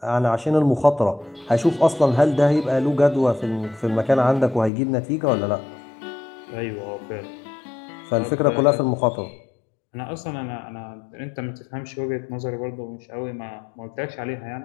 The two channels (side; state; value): right; drops out; at 4.7 s